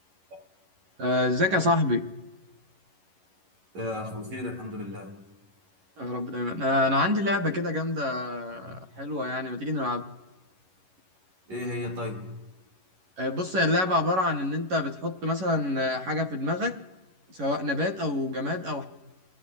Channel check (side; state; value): left; late; 11 ms